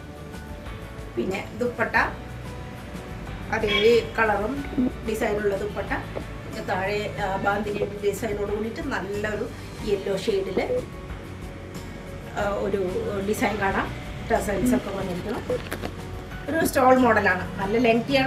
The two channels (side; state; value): both; identical; correlation 1.00